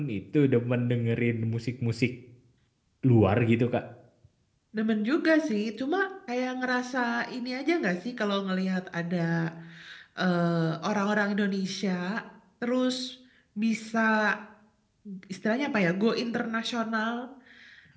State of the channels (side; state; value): both; identical; correlation 1.00